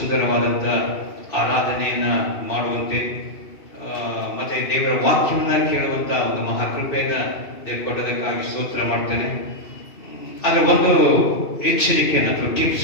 ಆರಾಧನೆಯನ್ನ ಮಾಡುವಂತೆ ಮತ್ತೆ ದೇವರ ವಾಕ್ಯವನ್ನ ಕೇಳುವಂತ ಒಂದು ಮಹಾಕೃಪೆಯನ್ನ ದೇವರು ಕೊಟ್ಟದಕ್ಕಾಗಿ ಸ್ತೋತ್ರ ಮಾಡ್ತೇನೆ. ಅದರ ಒಂದು ಎಚ್ಚರಿಕೆಯನ್ನು ಅಥವಾ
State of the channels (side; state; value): right; late; 2.7 ms